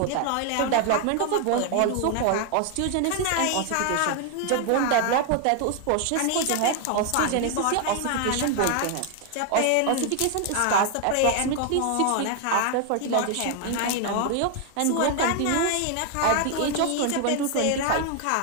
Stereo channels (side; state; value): both; different; correlation 0.00